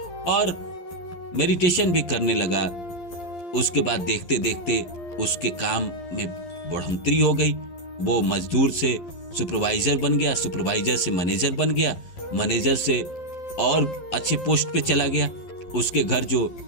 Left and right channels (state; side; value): late; right; 11 ms